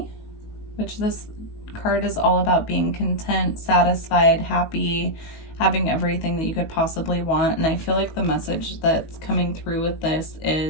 which this card is all about being content, satisfied, happy, having everything that you could possibly want. And I feel like the message that's coming through with this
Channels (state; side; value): late; right; 19 ms